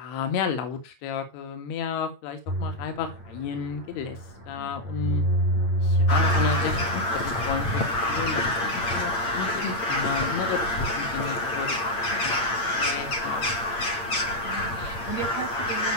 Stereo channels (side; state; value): right; late; 8.8 ms